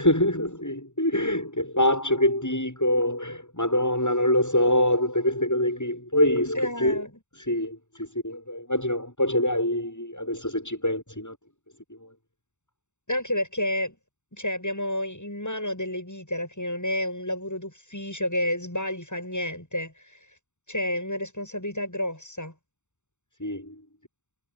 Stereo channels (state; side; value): late; right; 0.84 ms